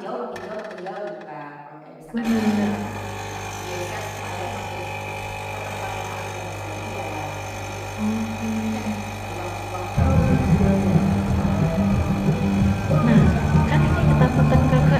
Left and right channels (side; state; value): both; identical; correlation 1.00